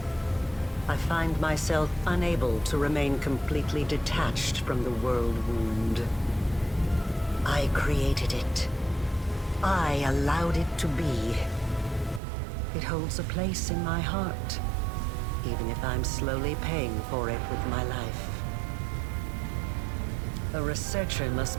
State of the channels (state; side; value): drops out; left; at 12.2 s